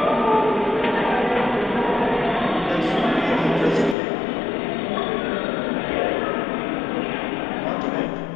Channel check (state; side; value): drops out; right; at 4.0 s